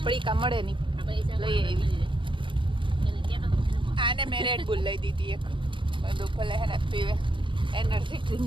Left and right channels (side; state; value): left; late; 0.24 ms